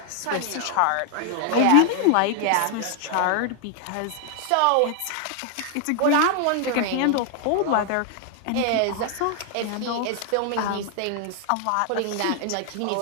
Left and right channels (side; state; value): both; different; correlation 0.00